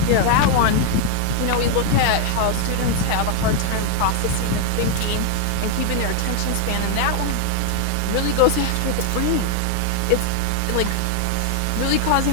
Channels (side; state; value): both; different; correlation 0.00